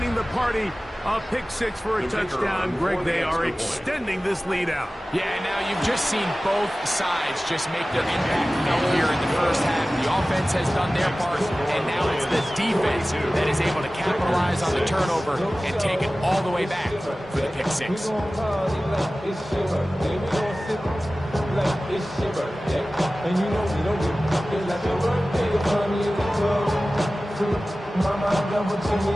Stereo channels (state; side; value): normal; both; correlation 0.97